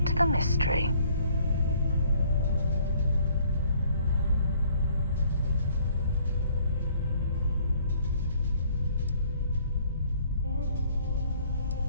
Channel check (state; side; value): inverted; both; correlation -0.61